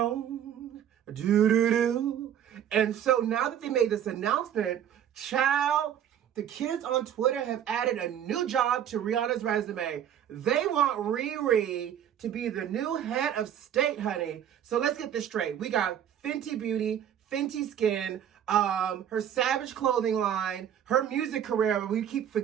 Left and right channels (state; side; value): quieter; left; 9.8 dB